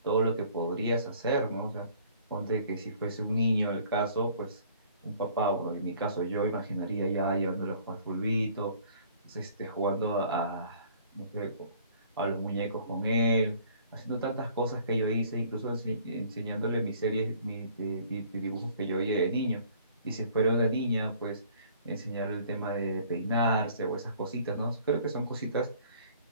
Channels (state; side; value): inverted; both; correlation -0.55